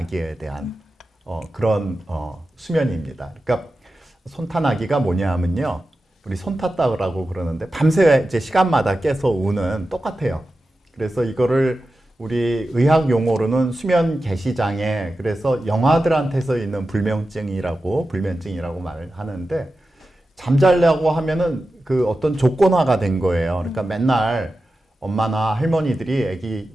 대한 그런 수면입니다. 그러니까 손탄아기가 뭐냐 하면요. 우리 손 탔다고 그러는데 밤새 이제 시간마다 깨서 우는 똑같아요. 그래서 이거를 우리 의학 용어로는 수면 개시장애, 그래서 영아들한테서 있는 불면증이라고 말을 하는데 잠자려고 하면은 그 어떤 조건화가 된 거예요. 그러니까 맨날 엄마나 할머니들이 아기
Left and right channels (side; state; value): both; normal; correlation 0.92